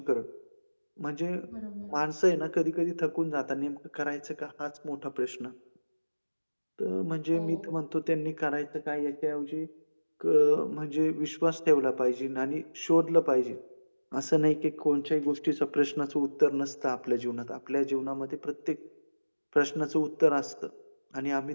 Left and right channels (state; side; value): inverted; both; correlation -1.00